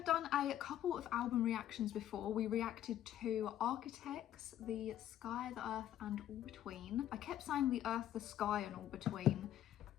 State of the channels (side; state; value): right; quieter; 11.7 dB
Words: done a couple of album reactions before. We reacted to Architects, The Sky, The Earth and All Between. I kept saying The Earth, The Sky and All Between.